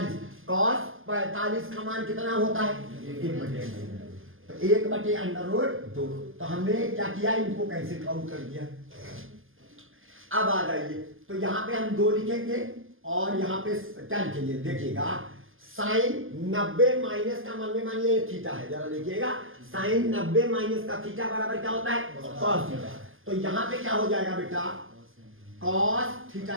cos 45 का मान कितना होता है 1/2, तो 1/2 अंडर रूट 2। तो हमने क्या किया इनको कैसे काउंट कर दिया। अब आ जाइए, तो यहाँ पे हम 2 लिखेंगे और यहाँ पे क्या लिखेंगे देखिएगा साइन 90 माइनस का मन में मानिए थीटा है, जरा देखिएगा साइन 90 माइनस का थीटा बराबर क्या होता है cos थीटा। तो यहाँ पे क्या हो जाएगा बेटा cos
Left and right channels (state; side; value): late; left; 0.59 ms